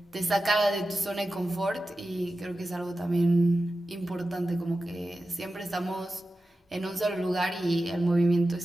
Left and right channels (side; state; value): both; normal; correlation 0.93